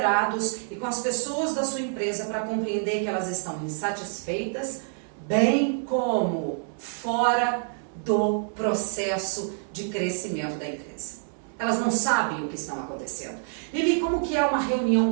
e com as pessoas da sua empresa para compreender que elas estão insatisfeitas, bem como fora do processo de crescimento da empresa. Elas não sabem o que está acontecendo. Lili, como que é uma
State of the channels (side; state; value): left; silent; 60 dB below the other